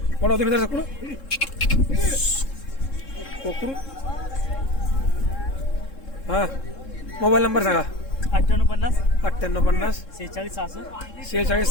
कोण होते मित्र सकुड कोकरू? हां, मोबाईल नंबर सांगा. 9850 9850 46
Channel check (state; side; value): late; right; 3.7 ms